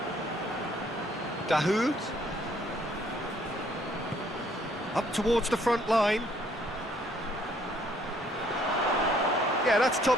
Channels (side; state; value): both; normal; correlation 0.64